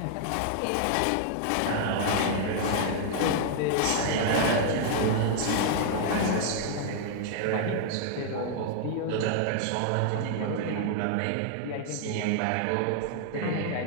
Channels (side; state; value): both; different; correlation -0.01